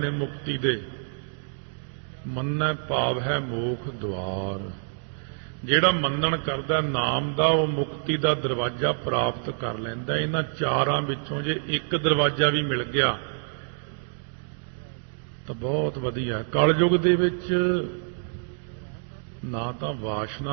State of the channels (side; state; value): left; silent; digital silence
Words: मुक्ति दे। मन्नै भाव है मोख द्वार। ਜਿਹੜਾ ਮੰਨਣ ਕਰਦਾ ਨਾਮ ਦਾ ਉਹ ਮੁਕਤੀ ਦਾ ਦਰਵਾਜ਼ਾ ਪ੍ਰਾਪਤ ਕਰ ਲੈਂਦਾ। ਇਹਨਾਂ ਚਾਰਾਂ ਵਿੱਚੋਂ ਜੇ ਇੱਕ ਦਰਵਾਜ਼ਾ ਵੀ ਮਿਲ ਗਿਆ ਤਾਂ ਬਹੁਤ ਵਧੀਆ। ਕਲਯੁਗ ਦੇ ਵਿੱਚ ਨਾ ਤਾਂ